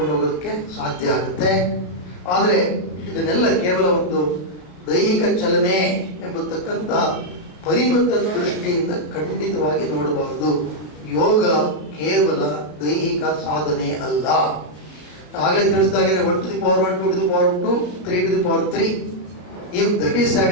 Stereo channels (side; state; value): right; late; 33 ms